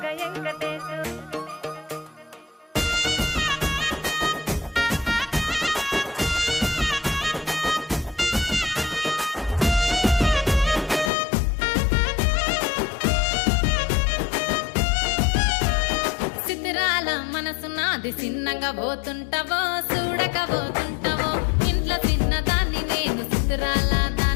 వెంకటేశు సిద్ధిరాల మనసు నాది చిన్నగా పోతుంటావో చూడక పోతుంటావో ఇంట్లో చిన్నదాన్ని నేను సిద్ధిరాల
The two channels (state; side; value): drops out; right; at 11.1 s